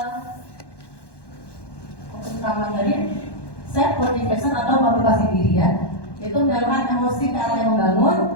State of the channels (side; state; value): right; late; 1.1 ms